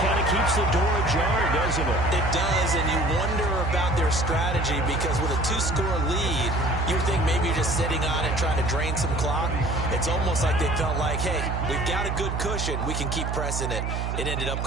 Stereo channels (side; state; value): right; noise; hum, 2 dB below the sound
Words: kind of keeps the door ajar, doesn't it? It does, and you wonder about their strategy because with a 2-score lead, you would think maybe you're just sitting on it trying to drain some clock. It's almost like they felt like, hey, we've got a good cushion. We can keep pressing it. It ended up